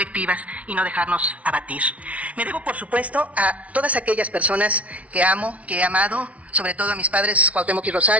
y no dejarnos abatir. Me debo, por supuesto, a todas aquellas personas que amo, que he amado, sobre todo a mis padres Cuauhtémoc y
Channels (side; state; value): left; late; 0.066 ms